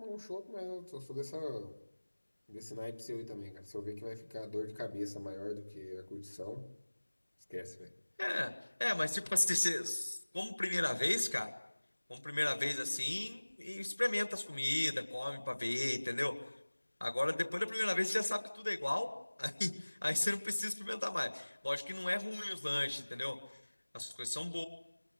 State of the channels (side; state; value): both; inverted; correlation -1.00